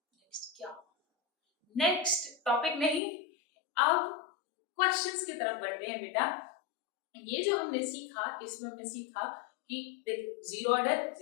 क्या, नेक्स्ट टॉपिक नहीं, अब क्वेश्चंस की तरफ बढ़ते हैं बेटा। ये जो हमने सीखा, इसमें हमने सीखा कि देखो जीरो ऑर्डर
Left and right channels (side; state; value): right; drops out; at 3.0 s